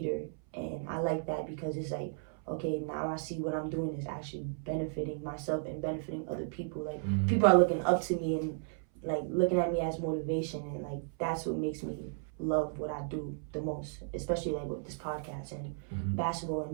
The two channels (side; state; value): left; silent; 55 dB below the other